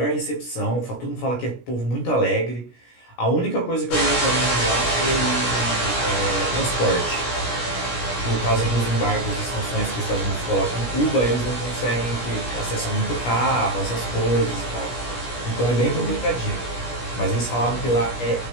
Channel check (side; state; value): right; late; 17 ms